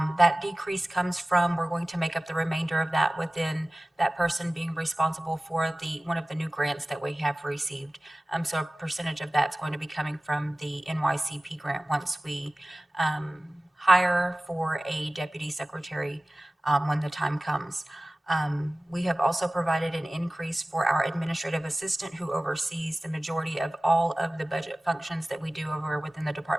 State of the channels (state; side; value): normal; both; correlation 0.97